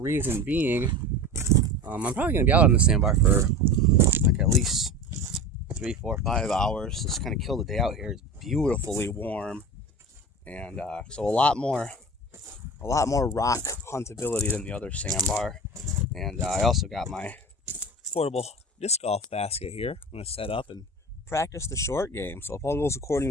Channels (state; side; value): normal; both; correlation 0.32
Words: being, I'm probably going to be out on the sandbar for like at least 3, 4, 5 hours. Just kind of kill the day out here. It's beautifully warm, and so a lot more rock huntability than the other sandbar. And I also got my portable disc golf basket here. I'm going to set up and practice the short game. So if all goes according